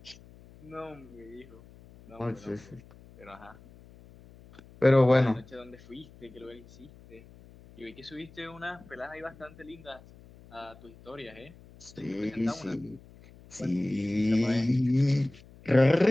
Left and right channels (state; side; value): noise; left; hum, 22 dB below the sound